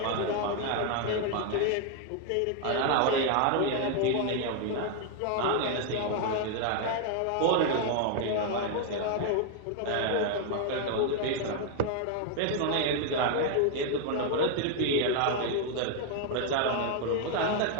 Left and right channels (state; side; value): different; both; correlation 0.00